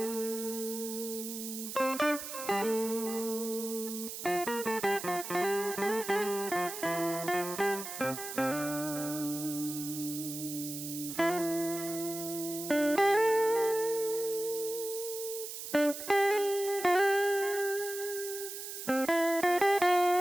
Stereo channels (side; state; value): right; noise; hiss, 8 dB below the sound